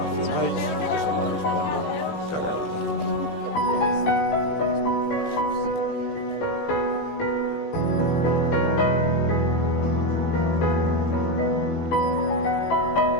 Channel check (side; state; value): right; late; 18 ms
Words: e que se correspondan ca realidade.